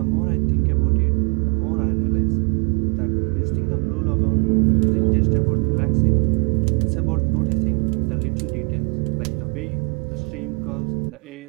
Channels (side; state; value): left; quieter; 34.2 dB